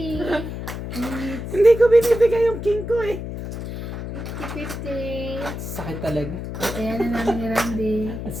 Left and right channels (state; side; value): noise; left; hum, 7 dB below the sound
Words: It's Hindi ko binibigay yung king ko eh. 50, 50. sakit talaga. Kaya na namin ni Randy. Ang